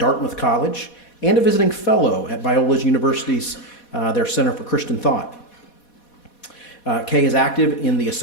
College and a visiting fellow at Biola University's their Center for Christian Thought. Kaye is active in the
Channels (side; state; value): right; late; 4.1 ms